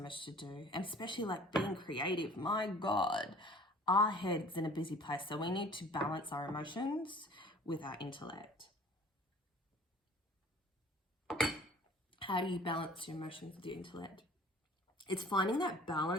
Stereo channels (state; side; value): normal; both; correlation 0.49